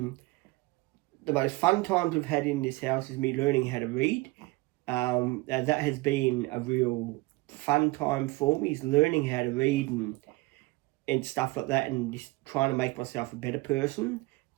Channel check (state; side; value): quieter; left; 22.2 dB